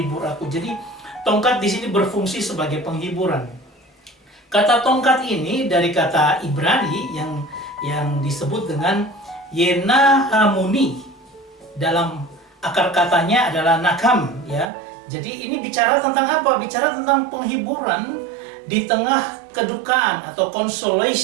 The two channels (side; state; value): left; drops out; at 14.7 s